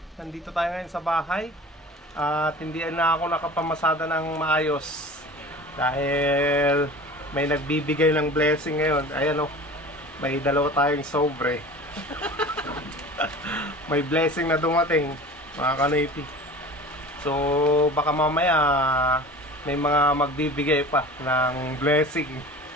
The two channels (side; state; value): both; normal; correlation 0.39